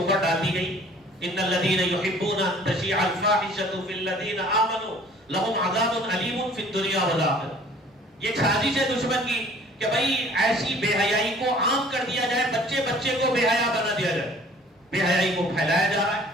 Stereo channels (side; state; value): both; normal; correlation 0.52